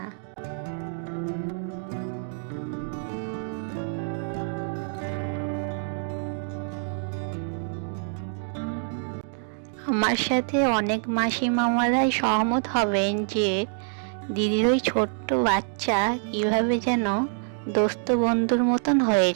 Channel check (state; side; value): silent; left; digital silence